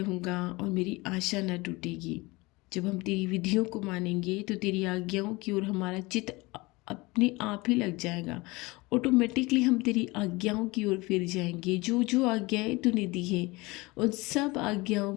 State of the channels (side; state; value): right; quieter; 23.1 dB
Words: और मेरी आशा न टूटेगी। जब हम तेरी विधियों को मानेंगे, तो तेरी आज्ञाओं की ओर हमारा चित्त अपने आप ही लग जाएगा। ऑटोमेटिकली हम तेरी आज्ञाओं की ओर फिर जाएंगे। जो जो आज्ञाएं तूने दी है, उन सब आज्ञाओं